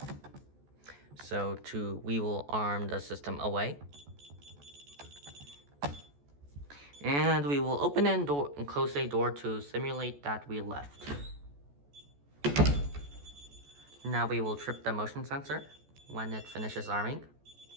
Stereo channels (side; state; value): left; late; 14 ms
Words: So we will arm the system away. And we will open and close a door to simulate that we left. Now we will trip the motion sensor when it finishes arming.